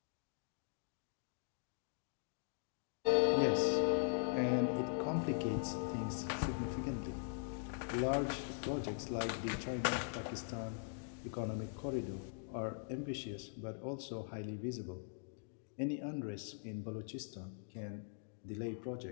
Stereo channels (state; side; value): silent; right; digital silence